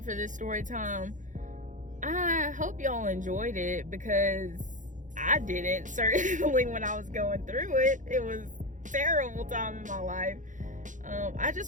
for this story time. I hope y'all enjoyed it, because I didn't, certainly, when I was going through it. It was a terrible time in my life. I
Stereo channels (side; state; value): left; late; 0.37 ms